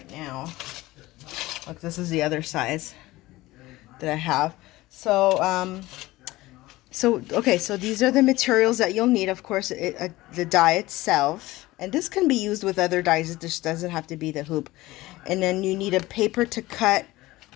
now. Look, this is the other size that I have. So, okay, so these are the materials that you'll need. Of course, the die itself, and this can be used with other dies. It just doesn't have to be the hoop. And then you need a paper to cut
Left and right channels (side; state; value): right; quieter; 18.6 dB